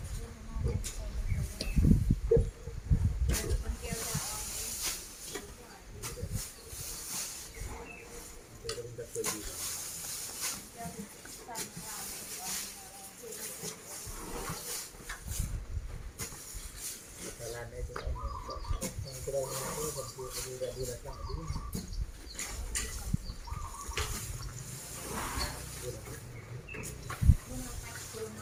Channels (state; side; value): identical; both; correlation 1.00